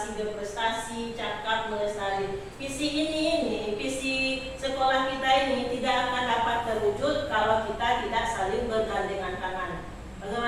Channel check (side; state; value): both; identical; correlation 1.00